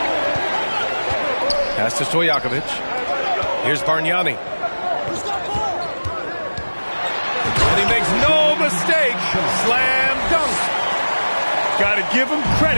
Pass to Stojakovic. Here's Bargnani. And he makes no mistake. Slam dunk. Got to give him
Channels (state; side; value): inverted; both; correlation -1.00